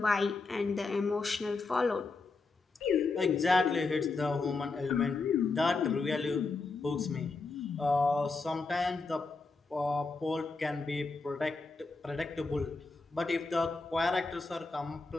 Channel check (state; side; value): quieter; right; 3.9 dB